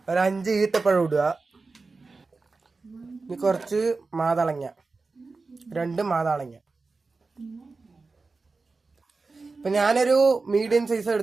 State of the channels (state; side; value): quieter; left; 4.0 dB